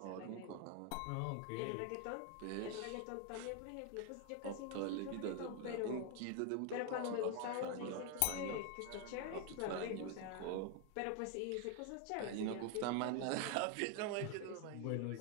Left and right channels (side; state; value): both; different; correlation 0.01